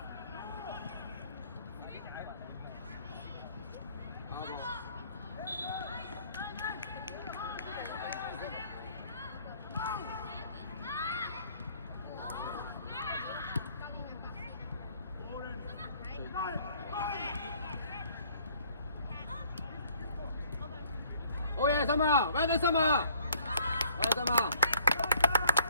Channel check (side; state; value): both; inverted; correlation -0.60